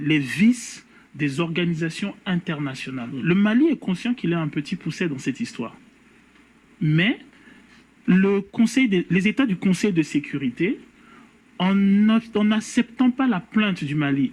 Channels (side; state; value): both; identical; correlation 1.00